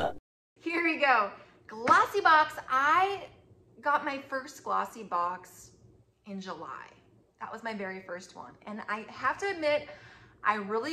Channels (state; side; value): identical; both; correlation 1.00